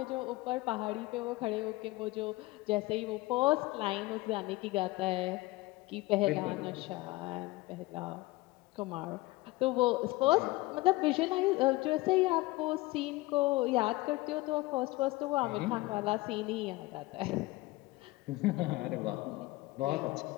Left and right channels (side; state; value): right; quieter; 20.8 dB